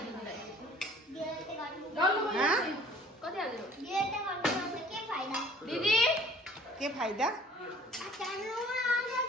दिदी के फाइदा?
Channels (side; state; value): both; normal; correlation 0.51